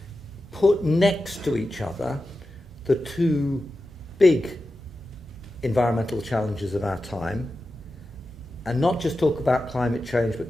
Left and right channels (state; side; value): normal; both; correlation 0.92